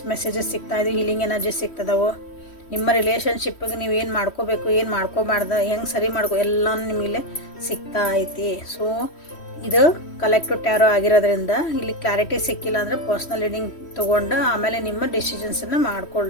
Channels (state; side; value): late; right; 3.1 ms